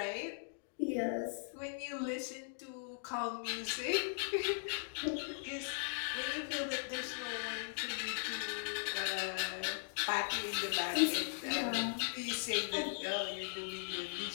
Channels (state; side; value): silent; right; digital silence